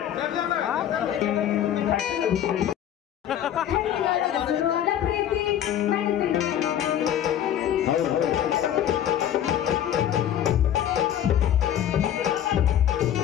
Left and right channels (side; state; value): right; quieter; 10.5 dB